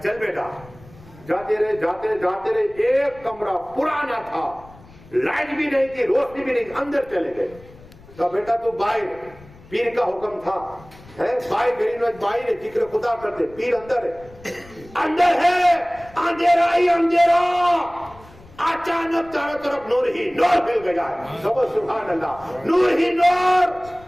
چل بیٹا، جاتے رہے، ایک کمرہ پرانا تھا، لائٹ بھی نہیں تھی، روشنی بھی نہیں تھی، اندر چلے گئے۔ تو بیٹا تو باہر، پیر کا حکم تھا، باہر غریب نواز باہر ہے، ذکر خدا کرتے، پیر اندر ہے، اندھیرا ہی اندھیرا، اچانک چاروں طرف نور ہی نور مل گیا ہے، سبحان اللہ، نور ہی نور۔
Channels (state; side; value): noise; left; rumble, 22 dB below the sound